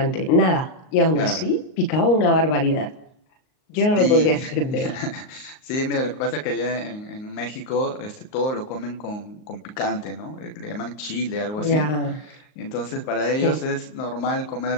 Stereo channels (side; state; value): right; late; 38 ms